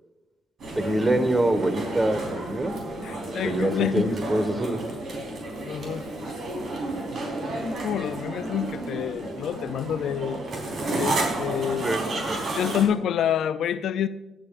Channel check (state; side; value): normal; both; correlation 0.73